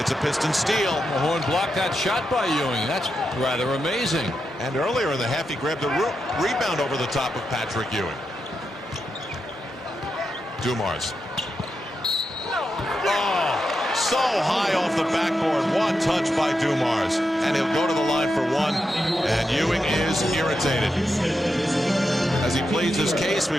a Piston steal. Mahorn blocked that shot by Ewing. That's rather amazing. And earlier in the half, he grabbed a rebound over the top of Patrick Ewing. Dumars. Oh, so high off the backboard. One touch by Dumars. And he'll go to the line for one. And Ewing is irritated. As he pleads his case,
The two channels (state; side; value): normal; both; correlation 0.86